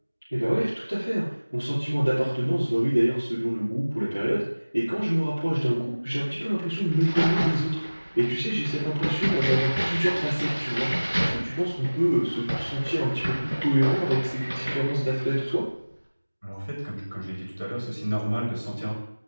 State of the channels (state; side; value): inverted; both; correlation -1.00